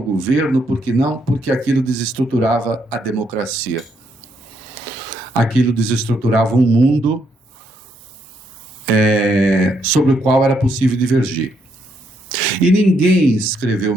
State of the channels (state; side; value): normal; both; correlation 0.75